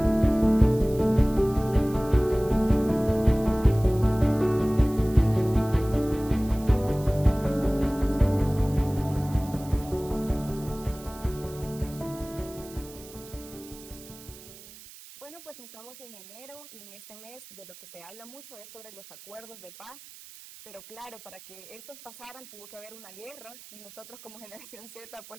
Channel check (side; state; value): right; noise; hiss, 18 dB below the sound